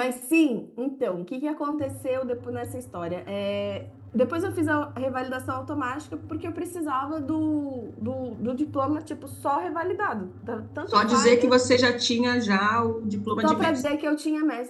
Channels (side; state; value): both; identical; correlation 1.00